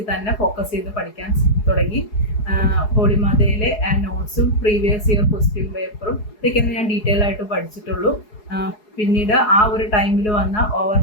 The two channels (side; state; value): right; late; 4.8 ms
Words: തന്നെ ഫോക്കസ് ചെയ്ത് പഠിക്കാൻ തുടങ്ങി. ഹോളിമാതയിലെ നോട്ട്സും പ്രീവിയസ് ഇയർ ക്വസ്റ്റ്യൻ പേപ്പറും ഇതൊക്കെയാണ് ഞാൻ ഡീറ്റെയിൽ ആയിട്ട് പഠിച്ചിട്ടുള്ളൂ. പിന്നീട് ആ ഒരു ടൈമിൽ വന്ന